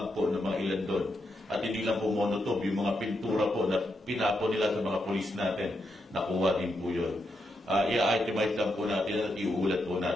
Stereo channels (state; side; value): normal; both; correlation 0.83